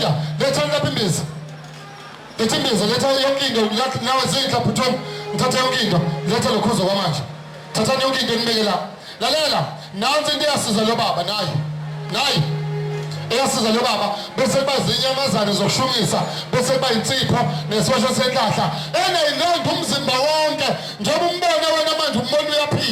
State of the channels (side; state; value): both; identical; correlation 1.00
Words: Letha lapha imbiza. Letha imbiza, letha yonke into nawe zindla bhuthoni. Ngithatha yonke into. Letha lokhuzo kwamanje. Thatha yonke into nibeke la. Lalela, nansi into eyasiza lo baba nayi. Nayi. Eyasiza lo baba bese bazinyamazane zokushumisa bese bayinsipho nesosho senhlahla eneyinondo umzimba wonke njengoba umbona wena manje umbona